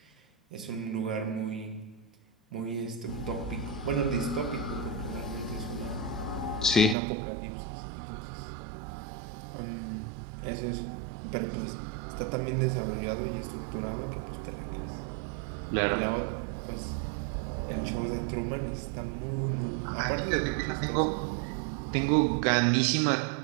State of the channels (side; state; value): left; drops out; at 7.0 s